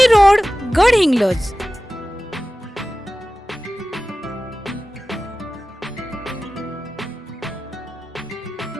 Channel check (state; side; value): normal; both; correlation 0.96